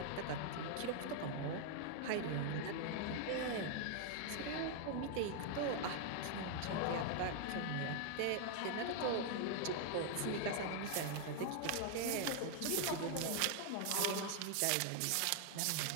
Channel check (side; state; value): both; different; correlation 0.00